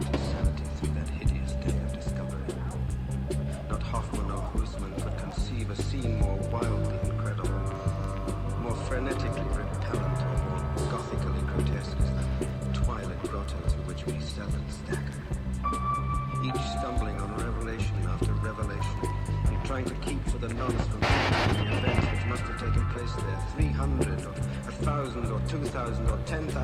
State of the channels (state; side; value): identical; both; correlation 1.00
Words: his sanity through that hideous day of discovery. Not Hoffman or Huisman could conceive a scene more wildly incredible, more frenetically repellent, or more gothically grotesque as the twilight grotto through which we seldom stagger. Each stumbling on revelation after revelation, and trying to keep for the nonce from the events which must have taken place there 300 or 1,000 or 2,000 or